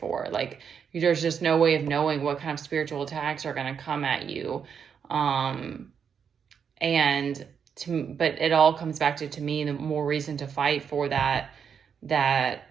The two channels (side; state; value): left; quieter; 7.1 dB